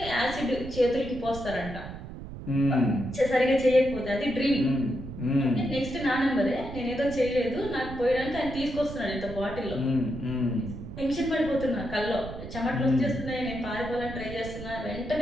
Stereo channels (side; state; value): right; noise; rumble, 11 dB below the sound